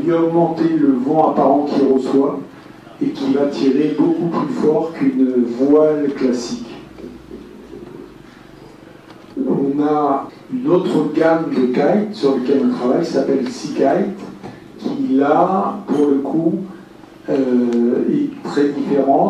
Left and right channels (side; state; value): both; identical; correlation 1.00